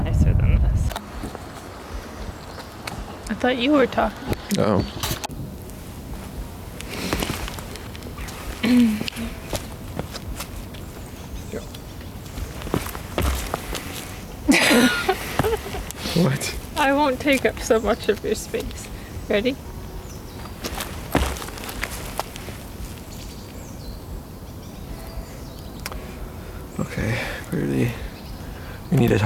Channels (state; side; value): identical; both; correlation 1.00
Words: than this. I thought you were talking. Oh. What? I won't take up so much of your space. Ready? Okay, really. We need to